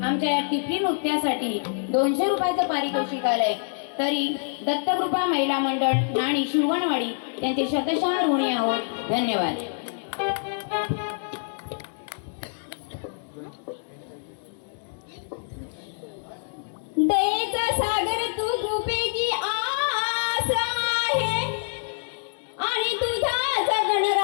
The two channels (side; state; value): right; silent; digital silence